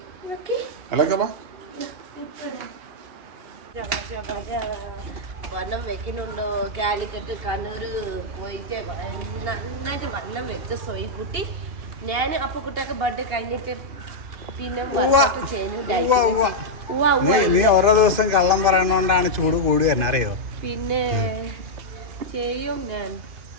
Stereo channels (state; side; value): late; left; 2.5 ms